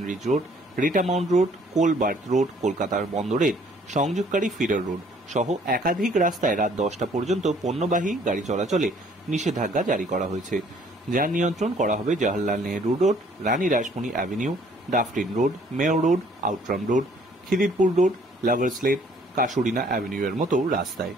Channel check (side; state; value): both; normal; correlation 0.60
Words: Reach Road, Rita Mount Road, Coal Berth Road, কলকাতার বন্দরের সংযোগকারী ফিডার রোড সহ একাধিক রাস্তায় রাত 10টা পর্যন্ত পণ্যবাহী গাড়ি চলাচলে নিষেধাজ্ঞা জারি করা হয়েছে। যান নিয়ন্ত্রণ করা হবে Jawaharlal Nehru Road, Rani Rashmoni Avenue, Dufferin Road, Mayo Road, Outram Road, Khidirpur Road, Lovers Lane, Casuarina Avenue এর মতো রাস্তায়।